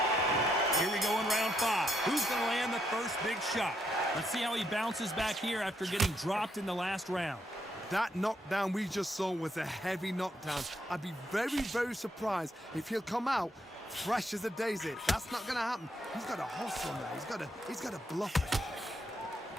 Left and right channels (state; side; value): normal; both; correlation 0.77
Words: Here we go in round 5. Who's going to land the first big shot? Let's see how he bounces back here after getting dropped in the last round. That knockdown we just saw was a heavy knockdown. I'd be very, very surprised if he'll come out fresh as a daisy. That's not going to happen. He's got a hustle now. He's got to bluff it.